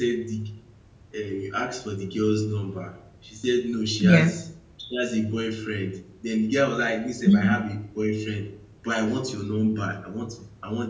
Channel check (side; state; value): both; identical; correlation 1.00